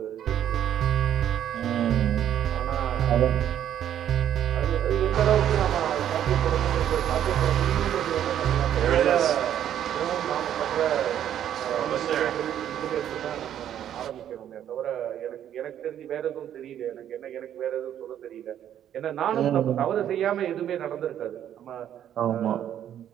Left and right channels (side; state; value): left; quieter; 10.5 dB